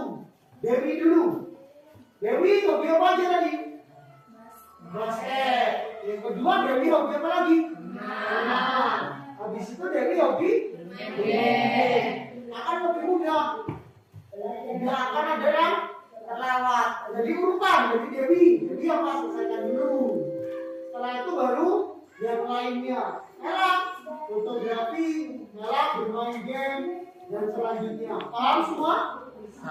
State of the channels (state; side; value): identical; both; correlation 1.00